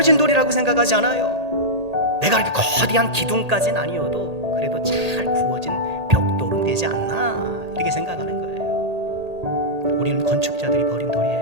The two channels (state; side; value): late; left; 1.8 ms